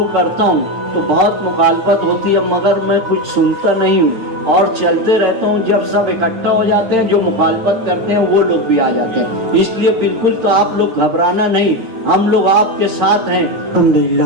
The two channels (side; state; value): left; late; 9.0 ms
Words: करता हूँ तो बहुत मुखालफत होती है, मगर मैं कुछ सुनता नहीं हूँ और चलते रहता हूँ। जब सब इकट्ठा हो जाते हैं, जो मुखालफत करते हैं वो लोग भी आ जाते हैं। इसलिए बिल्कुल तो आप लोग घबराना नहीं, हम लोग आपके साथ हैं।